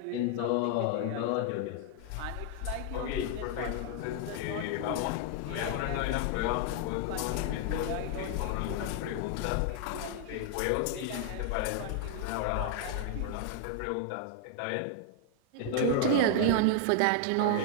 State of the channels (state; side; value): different; both; correlation 0.00